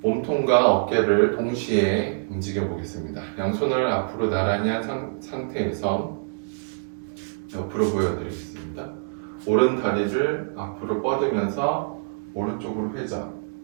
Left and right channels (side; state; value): left; silent; digital silence